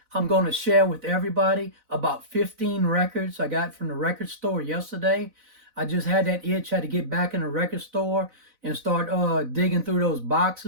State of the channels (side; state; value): left; late; 4.0 ms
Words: I'm going to share with everybody about 15 records I got from the record store yesterday. I just had that itch, had to get back in the record store and start digging through those